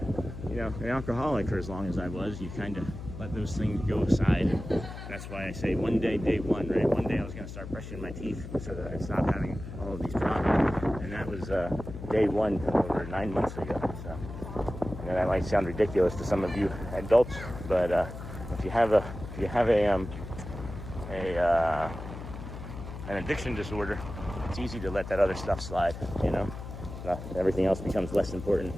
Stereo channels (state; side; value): noise; left; hum, 10 dB below the sound